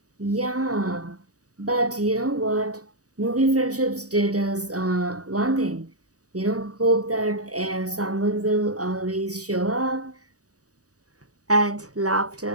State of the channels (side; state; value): left; late; 0.66 ms